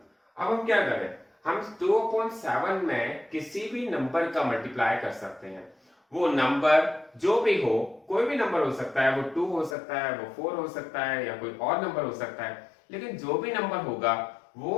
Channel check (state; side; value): drops out; right; at 9.8 s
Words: अब हम क्या करें, हम 2/7 में किसी भी नंबर का मल्टीप्लाई कर सकते हैं। वो नंबर जो भी हो, कोई भी नंबर हो सकता है, वो 2 हो सकता है, वो 4 हो सकता है, या कोई और नंबर हो सकता है, लेकिन जो भी नंबर होगा